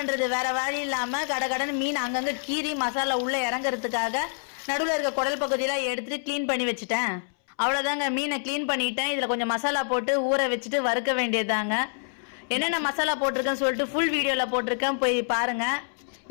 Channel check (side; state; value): right; silent; 60 dB below the other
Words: வேற வழி இல்லாம கடன்னு மீன் அங்கங்க கீறி மசாலா உள்ள இறங்குறதுக்காக நடுவில் இருக்க குடல் பகுதியெல்லாம் எடுத்துட்டு கிளீன் பண்ணி வச்சுட்டேன். அவ்வளோதாங்க, மீனை கிளீன் பண்ணிட்டேன். இதில் கொஞ்சம் மசாலா போட்டு ஊற வச்சுட்டு வறுக்க வேண்டியதாங்க. என்னென்ன மசாலா போட்டிருக்கேன்னு சொல்லிட்டு ஃபுல் வீடியோவில் போட்டிருக்கேன், போய் பாருங்க.